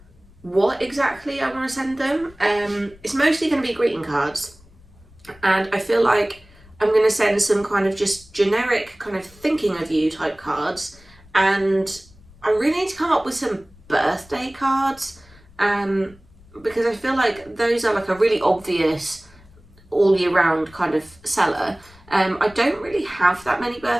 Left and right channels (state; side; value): noise; left; rumble, 25 dB below the sound